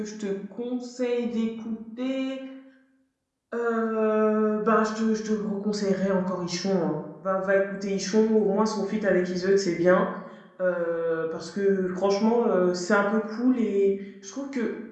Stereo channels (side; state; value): both; identical; correlation 1.00